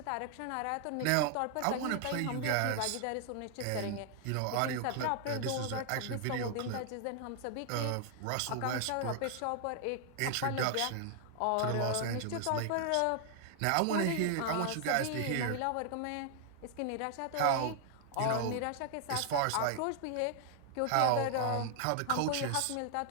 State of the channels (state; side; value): different; both; correlation 0.00